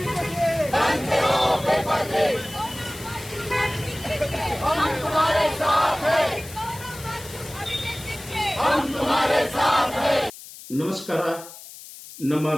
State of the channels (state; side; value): noise; left; hiss, 16 dB below the sound